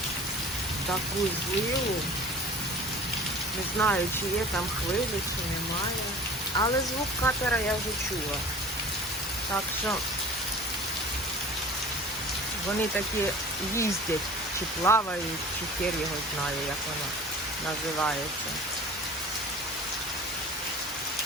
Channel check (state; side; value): normal; both; correlation 0.42